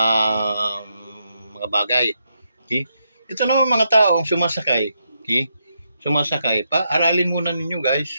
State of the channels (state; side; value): inverted; both; correlation -0.81